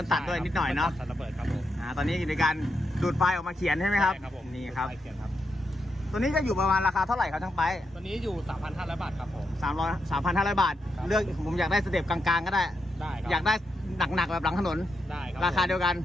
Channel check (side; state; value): both; normal; correlation 0.84